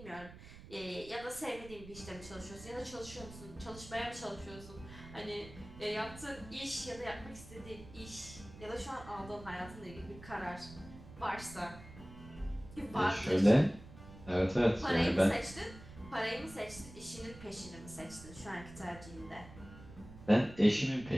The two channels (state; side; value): noise; right; rumble, 17 dB below the sound